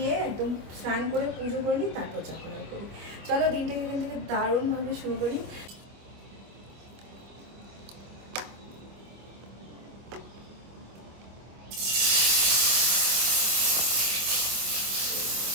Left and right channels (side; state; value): left; late; 25 ms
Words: একদম স্নান করে পুজো করে নিই, তারপর চা করা করি। চলো দিনটাকে এখান থেকে দারুণভাবে শুরু করি।